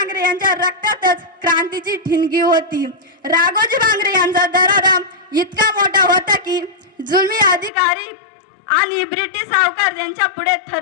यांच्या रक्तातच क्रांतीची ठिणगी होती। राघोजी भांगरे यांचा दरारा इतका मोठा होता की जुलमी अधिकारी आणि ब्रिटिश सावकार त्यांच्या पुढे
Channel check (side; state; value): right; drops out; at 7.7 s